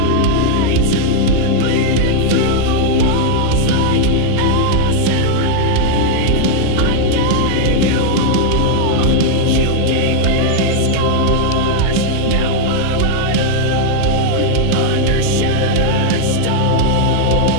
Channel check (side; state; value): both; different; correlation 0.00